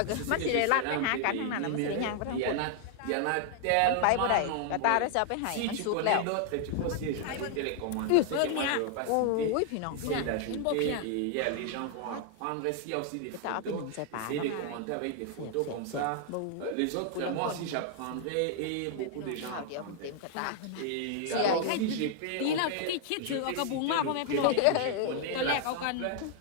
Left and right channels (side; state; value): both; different; correlation 0.00